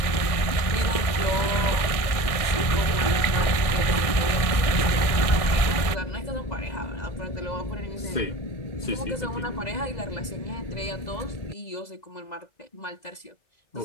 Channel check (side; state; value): right; late; 1.6 ms